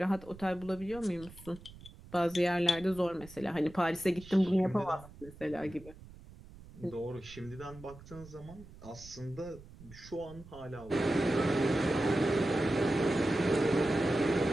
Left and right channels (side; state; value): right; noise; rumble, 19 dB below the sound